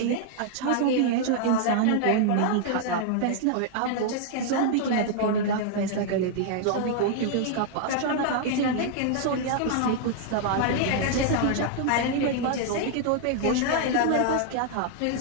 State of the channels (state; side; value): different; both; correlation -0.01